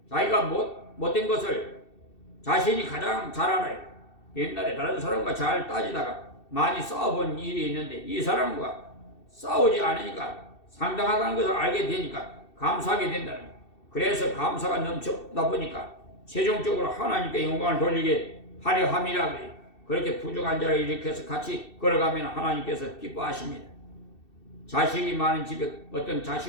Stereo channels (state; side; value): late; right; 2.7 ms